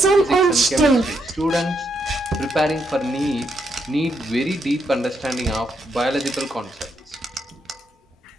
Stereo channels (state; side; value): normal; both; correlation 0.78